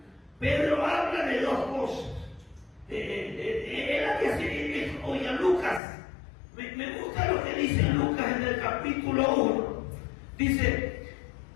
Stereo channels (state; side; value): drops out; right; at 5.8 s